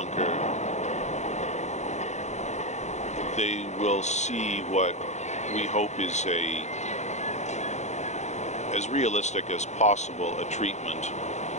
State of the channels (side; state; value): right; late; 0.33 ms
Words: they will see what we hope is as realistic as possible a treatment